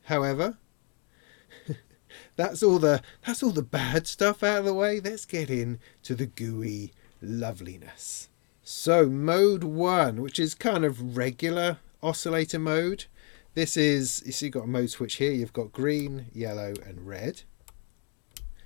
However, that's all the bad stuff out of the way. Let's get into the gooey loveliness. So mode 1, which is kind of regular oscillator mode. This is, you see, you've got a mode switch here. You've got green, yellow and red.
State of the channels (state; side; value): quieter; right; 35.5 dB